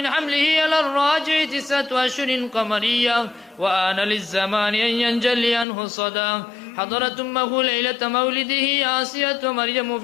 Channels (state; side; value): drops out; right; at 5.7 s